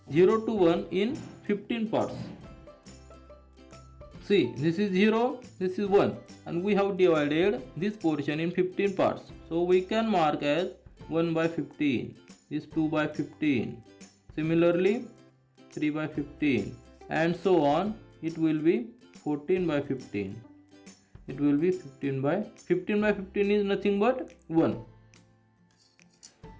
0 to 1 in 15 parts. See, this is 0, this is 1, and we have divided this portion in 15 parts. So we can mark as 1 by 15, this 2 by 15, similarly 3 by 15, and so on. It will be 14 by 15. It will be 15 by 15 is nothing but 1.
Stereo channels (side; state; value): both; identical; correlation 1.00